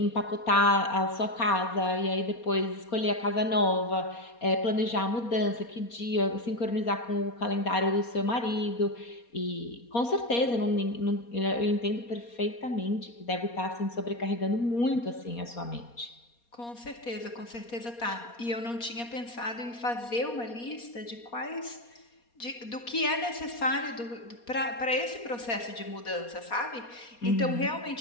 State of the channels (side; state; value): right; late; 4.2 ms